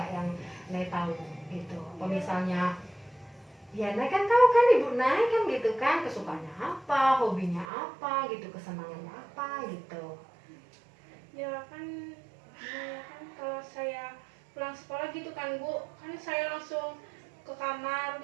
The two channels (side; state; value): left; drops out; at 7.7 s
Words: yang Nay tahu gitu? Apa misalnya ya Nay kan tahu kan ibu Nay kan gitu kan, kesukaannya apa, hobinya apa gitu, kesenangannya apa gitu. Ya kan, kalau saya pulang sekolah gitu kan Bu, kan saya langsung ke kamar